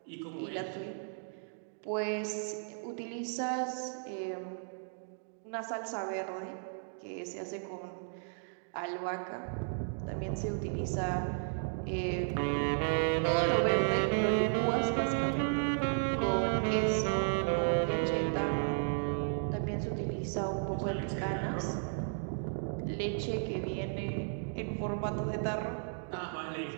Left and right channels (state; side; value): silent; left; digital silence